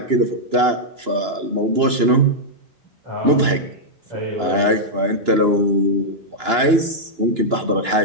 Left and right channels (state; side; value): late; left; 2.9 ms